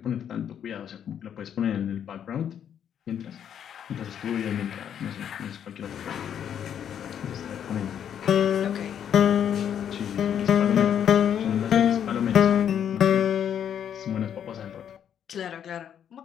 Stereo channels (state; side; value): quieter; right; 9.0 dB